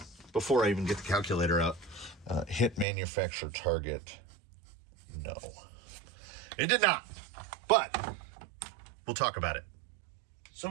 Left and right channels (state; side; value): drops out; left; at 2.9 s